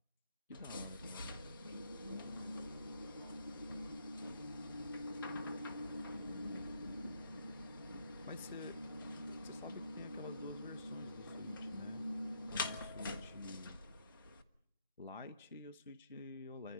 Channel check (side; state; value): both; inverted; correlation -0.74